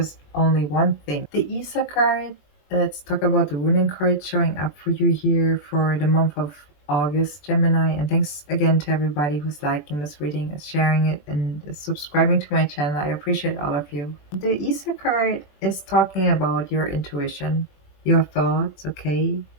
only one thing. The Isa card, let's talk about the ruling card showing up for you here for the month of August, Gemini. And thanks again to everybody who's liking this reading, is sharing it, and is subscribing to my channel. I appreciate all of you. The Isa card is talking about your intuition, your thoughts, okay?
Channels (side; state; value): right; late; 20 ms